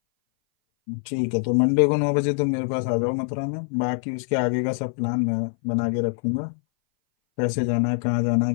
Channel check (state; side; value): silent; right; 59 dB below the other